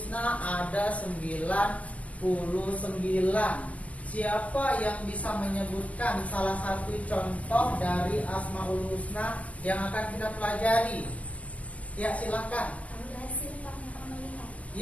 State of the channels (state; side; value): late; right; 0.066 ms